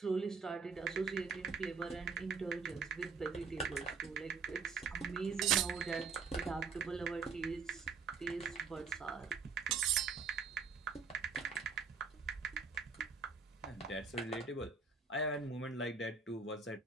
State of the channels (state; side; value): quieter; left; 5.1 dB